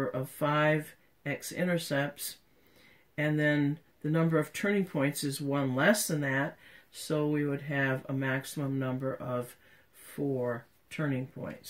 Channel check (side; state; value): both; identical; correlation 1.00